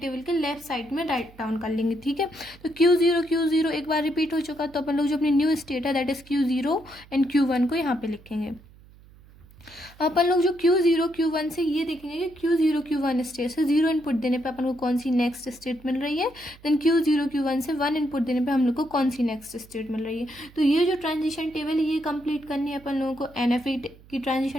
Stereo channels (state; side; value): noise; right; hum, 24 dB below the sound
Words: के लेफ्ट साइड में राइट डाउन कर लेंगे, ठीक है। तो Q0 एक बार रिपीट हो चुका, तो अपन लोग जो अपनी न्यू स्टेट है that is Q0 and Q1 को यहाँ पे लिखेंगे। अपन लोग जो Q0 Q1 से ये देखेंगे कि Q0 Q1 स्टेट से 0 इनपुट देने पे अपन को कौन सी नेक्स्ट स्टेट मिल रही है, देन Q0 Q1 से 1 इनपुट देने पे हम लोग को कौन सी नेक्स्ट स्टेट मिल रही है। तो ये जो ट्रांजिशन टेबल है ये कंप्लीट करनी है अपन लोगों को की